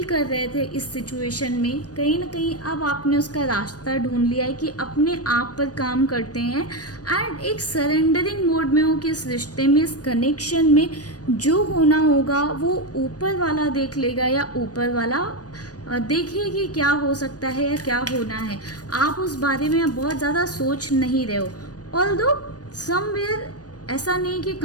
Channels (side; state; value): right; late; 0.68 ms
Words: कर रहे थे इस सिचुएशन में। कहीं ना कहीं अब आपने उसका रास्ता ढूंढ लिया है कि अपने आप पर काम करते हैं एंड एक सरेंडरिंग मोड में हो कि इस रिश्ते में, इस कनेक्शन में जो होना होगा वो ऊपर वाला देख लेगा, या ऊपर वाला देखिए कि क्या हो सकता है या क्या होना है। आप उस बारे में अब बहुत ज़्यादा सोच नहीं रहे हो। ऑल्दो समवेयर ऐसा नहीं कि